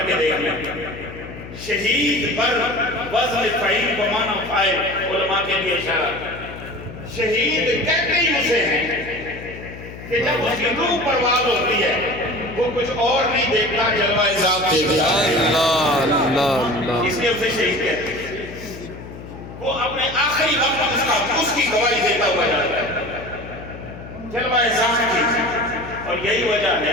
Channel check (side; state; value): left; noise; hum, 13 dB below the sound